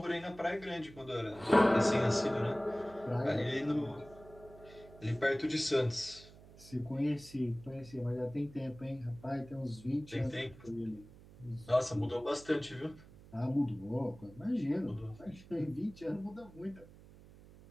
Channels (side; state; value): right; noise; hum, 20 dB below the sound